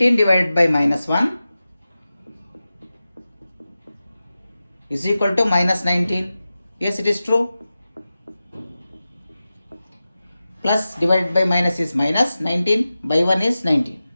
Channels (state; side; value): inverted; both; correlation -0.94